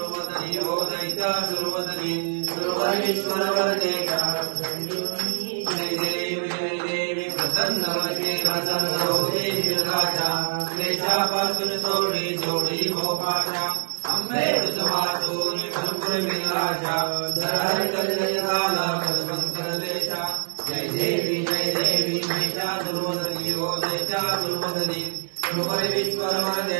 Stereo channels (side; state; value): left; silent; digital silence